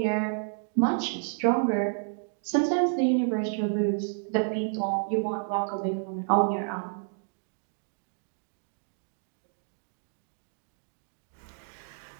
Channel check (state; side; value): silent; left; 58 dB below the other